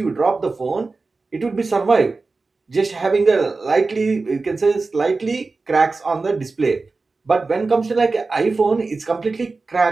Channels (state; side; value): quieter; left; 3.8 dB